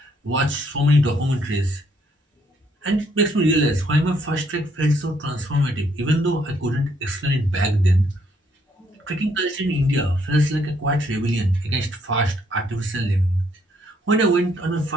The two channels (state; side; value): normal; both; correlation 0.69